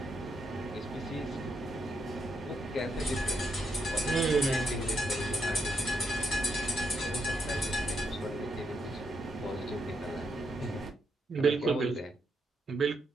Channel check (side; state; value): both; normal; correlation 0.79